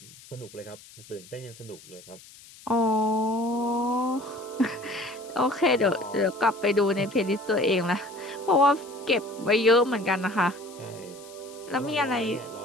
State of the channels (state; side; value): noise; left; hiss, 21 dB below the sound